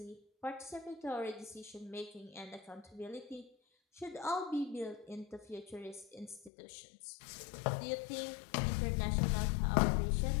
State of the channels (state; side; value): drops out; right; at 6.5 s